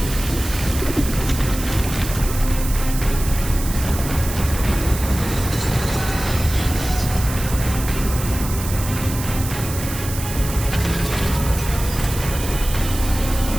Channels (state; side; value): noise; right; hiss, 9 dB below the sound